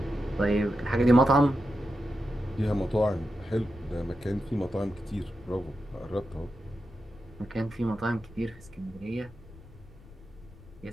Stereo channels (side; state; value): left; noise; rumble, 20 dB below the sound